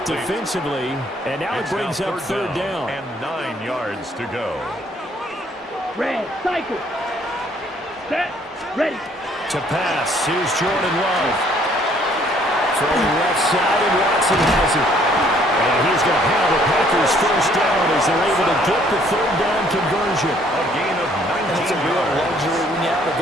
defensively, and now it brings up third down. And 9 yards to go. Red, cycle. Set, ready. To pass, here's Jordan Love. Throwing left side, and Watson has it. And he's going to have the Packers first down as they're able to get the third down conversion. A gain of 19 And it's a real luxury when you have a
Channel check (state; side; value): normal; both; correlation 0.62